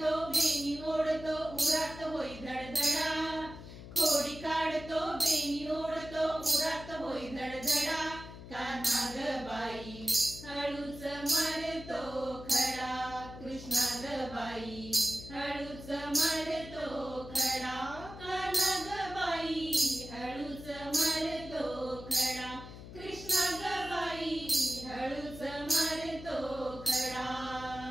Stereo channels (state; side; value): noise; left; hum, 13 dB below the sound